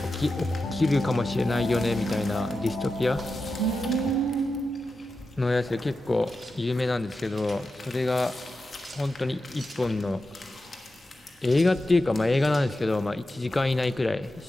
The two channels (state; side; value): normal; both; correlation 0.91